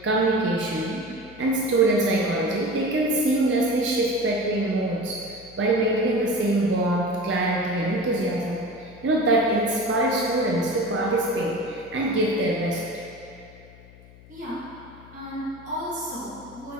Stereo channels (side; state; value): left; noise; hum, 22 dB below the sound